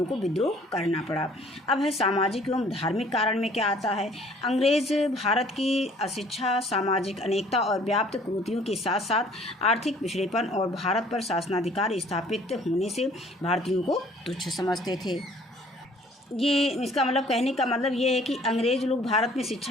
को विद्रोह करना पड़ा। अब है सामाजिक एवं धार्मिक कारण में क्या आता है। अंग्रेज़ भारत की अशिक्षा, सामाजिक अनेकता और व्याप्त कुरीतियों के साथ साथ आर्थिक पिछड़ेपन और भारत पर शासनाधिकार स्थापित होने से भारतीयों को तुच्छ समझते थे। ये इसका मतलब कहने का मतलब ये है कि अंग्रेज़ लोग भारत में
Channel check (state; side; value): normal; both; correlation 0.56